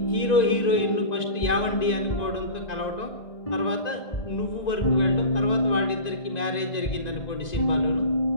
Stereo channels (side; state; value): right; late; 1.9 ms